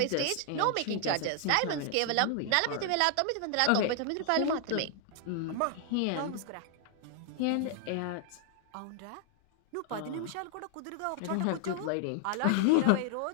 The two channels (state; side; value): different; both; correlation 0.00